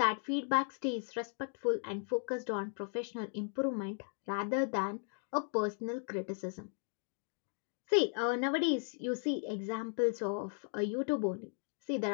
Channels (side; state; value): right; silent; 53 dB below the other